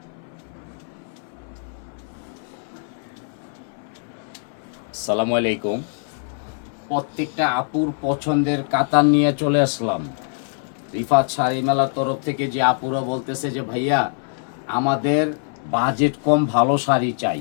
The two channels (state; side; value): silent; right; 61 dB below the other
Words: আসসালামু আলাইকুম। প্রত্যেকটা আপুর পছন্দের কাতান নিয়ে চলে আসলাম। রিফাত শাড়ি মেলার তরফ থেকে যে আপুরা বলতেছে যে ভাইয়া আমাদের বাজেট কম, ভালো শাড়ি